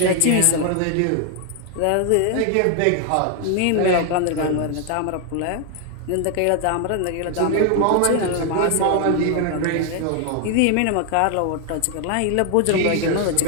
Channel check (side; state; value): both; different; correlation 0.00